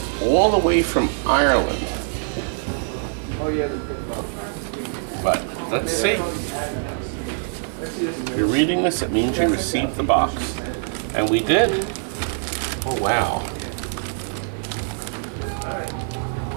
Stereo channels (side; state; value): left; silent; 56 dB below the other